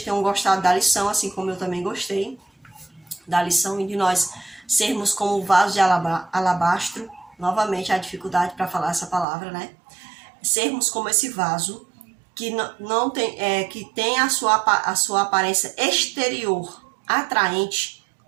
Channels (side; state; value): left; drops out; at 9.2 s